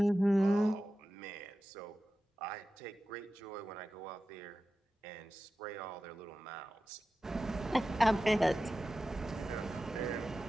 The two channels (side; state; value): both; normal; correlation 0.93